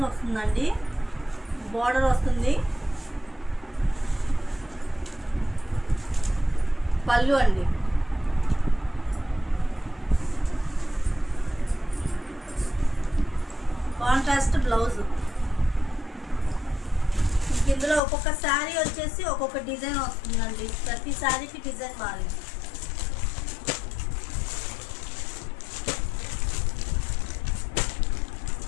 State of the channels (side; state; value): right; drops out; at 18.0 s